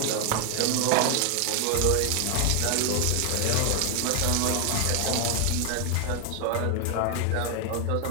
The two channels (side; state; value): both; different; correlation 0.00